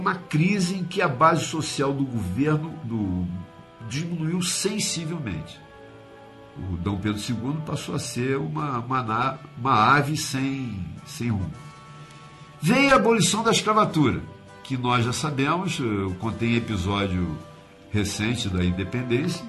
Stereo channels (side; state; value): both; identical; correlation 1.00